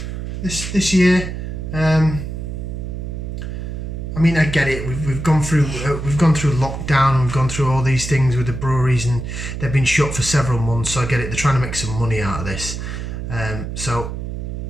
this year. I mean, I get it. We've gone through lockdown, and we've gone through all these things with the breweries, and they've been shut for several months. So I get it. They're trying to make some money out of this. So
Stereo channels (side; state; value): right; noise; hum, 6 dB below the sound